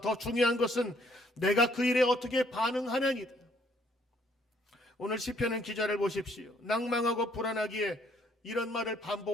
더 중요한 것은 내가 그 일에 어떻게 반응하느냐이다. 오늘 시편은 기자를 보십시오. 낭망하고 불안하기에 이런 말을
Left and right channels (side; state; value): both; normal; correlation 0.66